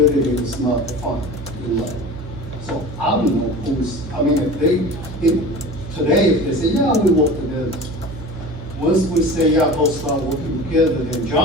is not defined in law. So I don't know who's, I mean, today, if they say, yeah, we work together. Once we say, yeah, both start working together, then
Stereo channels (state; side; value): noise; right; hum, 11 dB below the sound